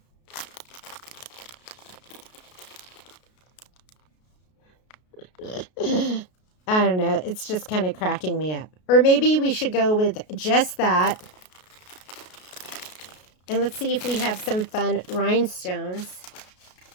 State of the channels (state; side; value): late; right; 33 ms